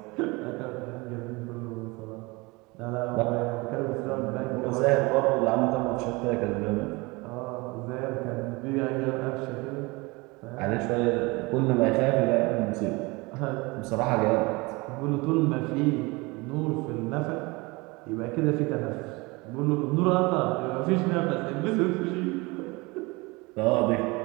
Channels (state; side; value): quieter; left; 24.8 dB